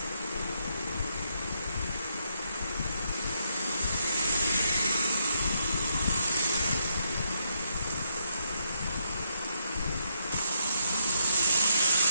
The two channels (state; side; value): inverted; both; correlation -0.78